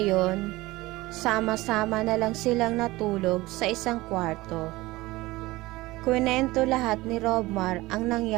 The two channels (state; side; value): quieter; left; 19.7 dB